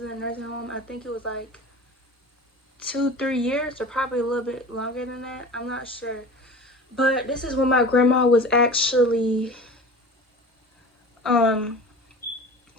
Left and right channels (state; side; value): normal; both; correlation 0.37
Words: in a nursing home. I think it was like 2-3 years, or probably a little bit longer than that. I'm not sure. But this is when my grandma was actually